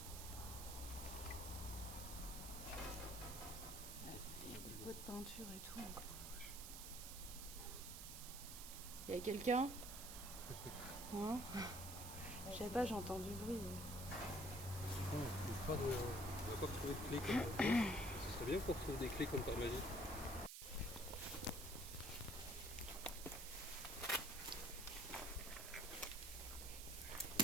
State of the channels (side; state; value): right; noise; hiss, 8 dB below the sound